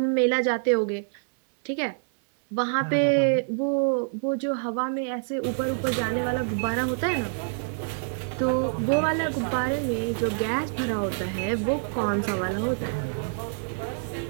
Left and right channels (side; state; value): left; silent; 61 dB below the other